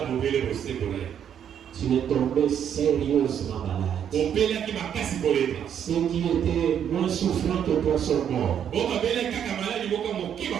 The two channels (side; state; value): left; quieter; 9.0 dB